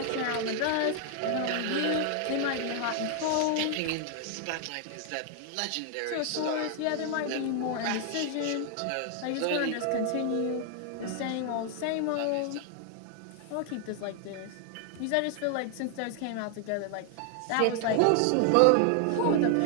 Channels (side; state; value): both; different; correlation 0.00